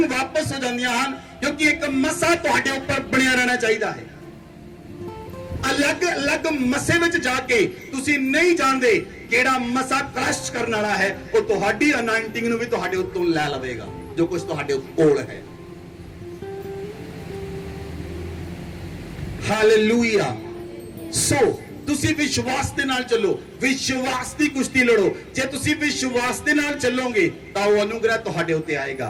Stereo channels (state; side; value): identical; both; correlation 1.00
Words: ਵਾਪਸ ਹੋ ਜਾਂਦੀਆਂ ਹਨ, क्योंकि एक मसा तुहाडे ऊपर बनिया रहना चाहिए है। अलग अलग मसे विच जाके तुसी नहीं जानदे केड़ा मसा क्रश करने वाला है, वो तुहाडी अनाइंटिंग नूं भी तुहाडे उत्तों लै लवेगा, जो कुछ तुहाडे कोल है। हालेलुया। सो तुसी विश्वास दे नाल चलो, विश्वास दी कुश्ती लड़ो। जे तुसी विश्वास दे नाल चलोगे तां वो अनुग्रह तुहाडे उत्ते आएगा।